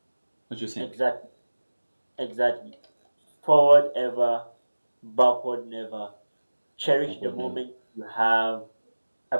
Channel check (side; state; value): both; inverted; correlation -1.00